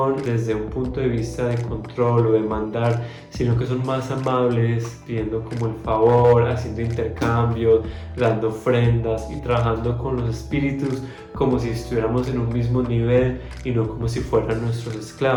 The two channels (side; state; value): both; identical; correlation 1.00